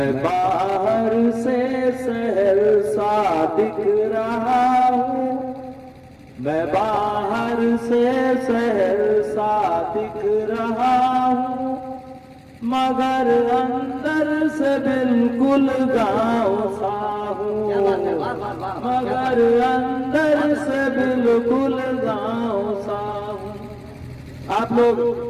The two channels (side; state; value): both; identical; correlation 1.00